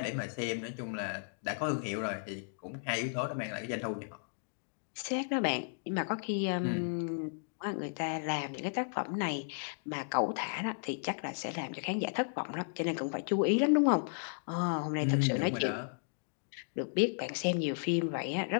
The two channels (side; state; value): right; silent; digital silence